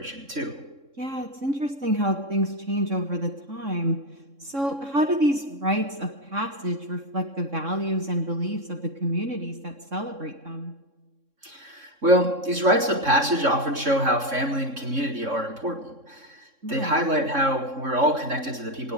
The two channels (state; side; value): late; left; 3.6 ms